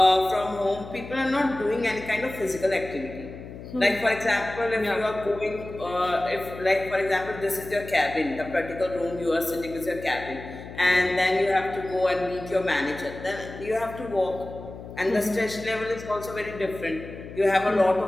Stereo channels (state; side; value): noise; left; hum, 13 dB below the sound